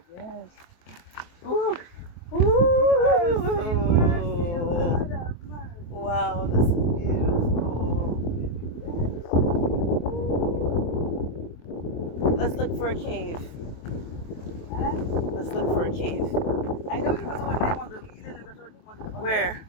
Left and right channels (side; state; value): right; late; 23 ms